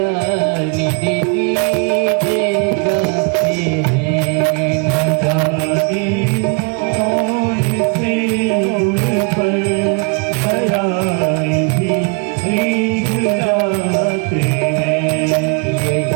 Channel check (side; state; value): left; quieter; 32.4 dB